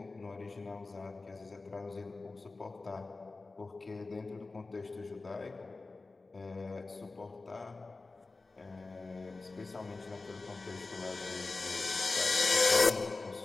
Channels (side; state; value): right; quieter; 3.6 dB